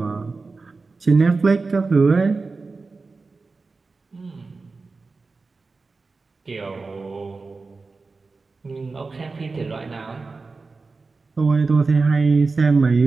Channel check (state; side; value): quieter; left; 4.0 dB